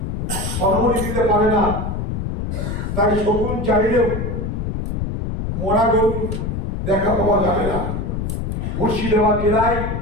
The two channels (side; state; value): left; noise; rumble, 2 dB below the sound